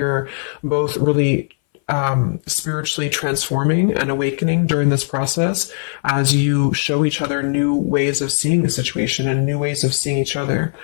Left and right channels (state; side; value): silent; right; 61 dB below the other